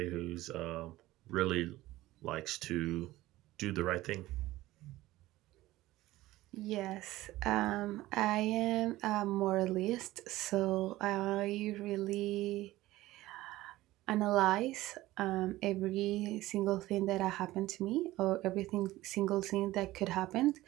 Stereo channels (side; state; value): left; quieter; 17.1 dB